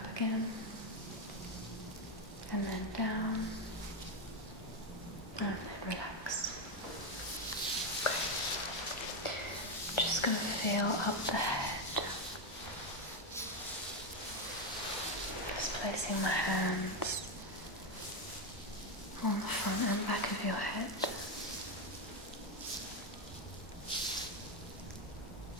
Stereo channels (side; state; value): both; normal; correlation 0.08